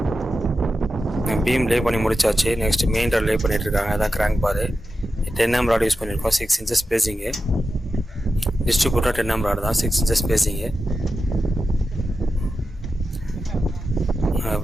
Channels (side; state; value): both; normal; correlation 0.91